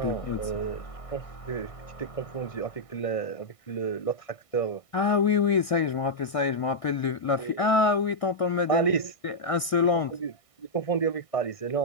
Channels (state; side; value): late; right; 1.6 ms